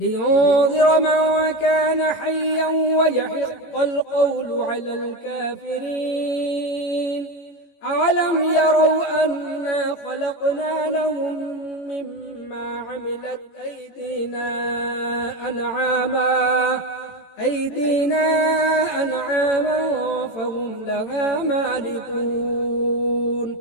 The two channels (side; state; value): right; late; 18 ms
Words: من كان حيا ويحق القول على الكافرين أولم يروا أنا خلقنا لهم مما عملت أيدينا أنعاما فهم لها مالكون